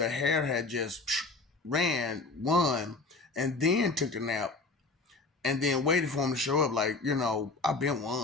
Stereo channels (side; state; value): right; quieter; 3.6 dB